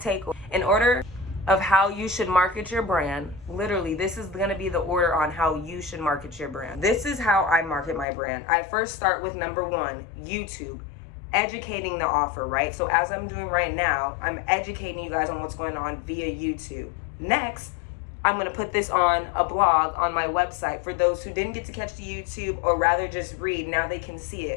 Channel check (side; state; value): right; drops out; at 8.1 s